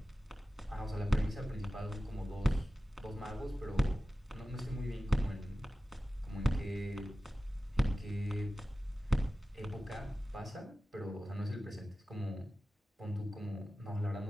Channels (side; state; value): both; normal; correlation 0.95